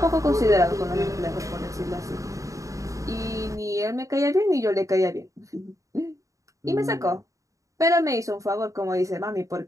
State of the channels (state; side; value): late; left; 0.16 ms